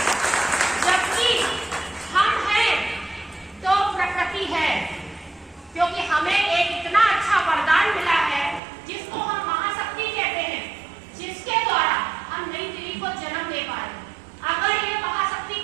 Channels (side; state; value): left; drops out; at 8.6 s